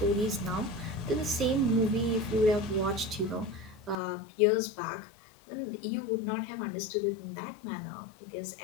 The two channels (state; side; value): drops out; right; at 4.0 s